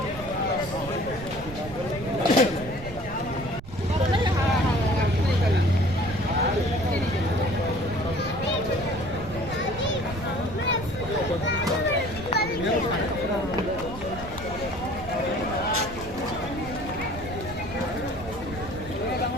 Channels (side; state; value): right; noise; rumble, 13 dB below the sound